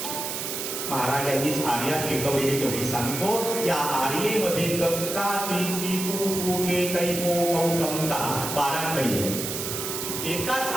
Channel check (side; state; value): right; noise; hiss, 4 dB below the sound